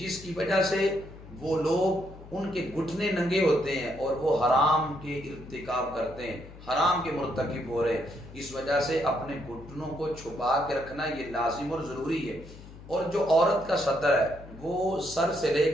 کی وجہ سے وہ لوگ ان کے گھٹنے ننگے ہوتے ہیں اور وہ حرام کے ارتکاب کرتے ہیں، حرام کے مرتکب ہو رہے ہیں۔ اس وجہ سے اپنے گھٹنوں کو چھپا کے رکھنا یہ لازم اور ضروری ہے۔ اور جو عورت کا ستر ہے وہ سر سے لے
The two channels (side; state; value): left; noise; hum, 17 dB below the sound